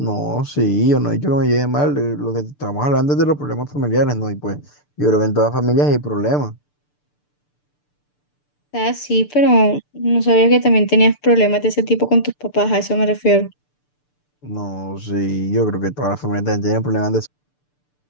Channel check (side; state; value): right; late; 6.8 ms